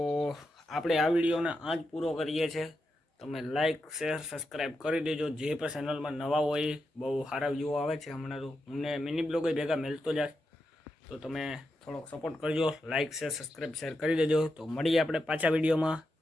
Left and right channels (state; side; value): normal; both; correlation 0.87